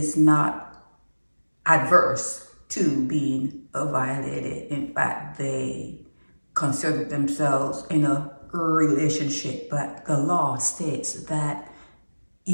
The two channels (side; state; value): both; inverted; correlation -1.00